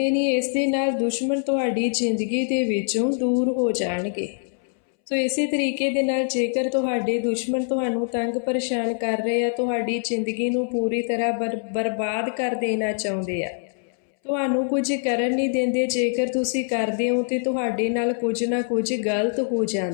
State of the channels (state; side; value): silent; right; 63 dB below the other